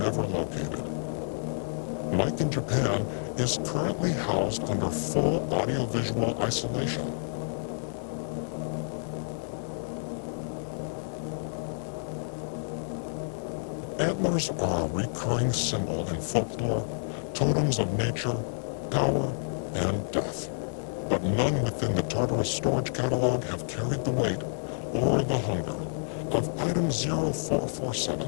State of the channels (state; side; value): silent; right; digital silence